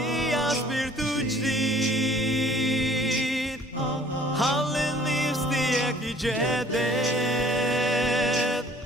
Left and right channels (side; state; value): both; normal; correlation 0.54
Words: spiritu jdid Hallin nifstiek i jedet